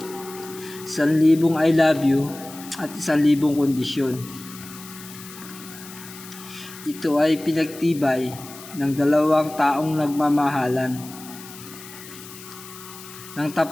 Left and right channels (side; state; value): left; noise; hiss, 16 dB below the sound